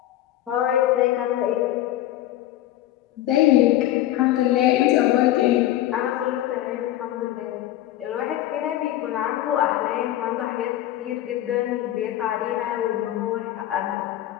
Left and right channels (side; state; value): right; quieter; 13.8 dB